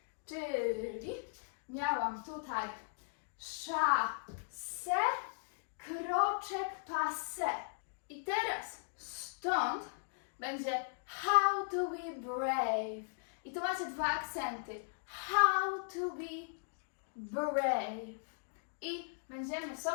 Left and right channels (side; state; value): right; silent; digital silence